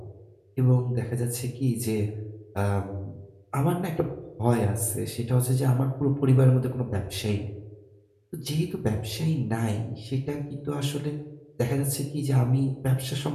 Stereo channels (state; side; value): identical; both; correlation 1.00